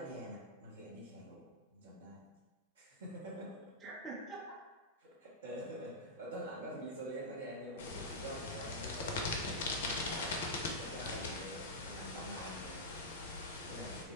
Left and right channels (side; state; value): both; normal; correlation -0.11